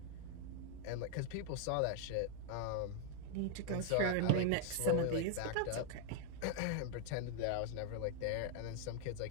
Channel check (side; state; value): both; different; correlation 0.00